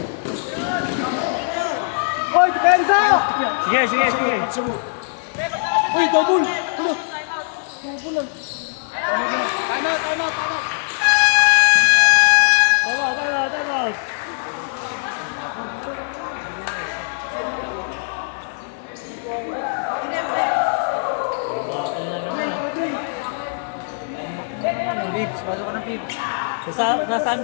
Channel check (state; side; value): silent; right; digital silence